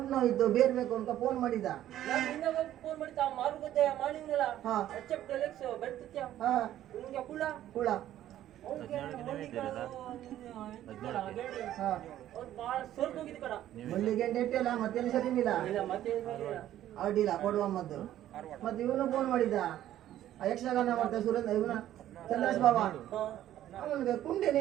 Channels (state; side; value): quieter; left; 12.5 dB